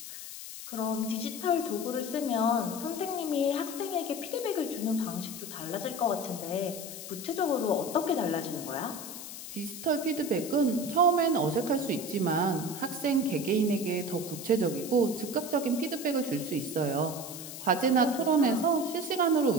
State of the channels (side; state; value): left; noise; hiss, 10 dB below the sound